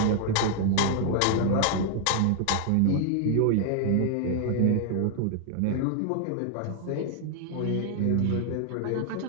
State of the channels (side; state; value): both; different; correlation 0.00